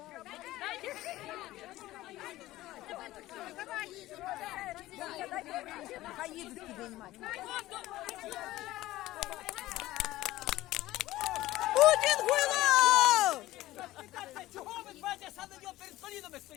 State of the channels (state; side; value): quieter; right; 16.5 dB